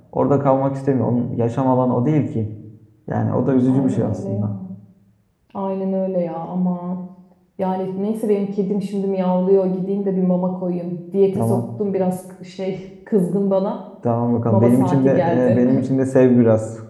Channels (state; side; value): identical; both; correlation 1.00